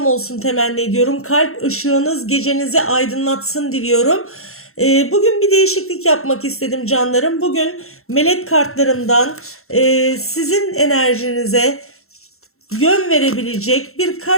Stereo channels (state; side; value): late; right; 0.62 ms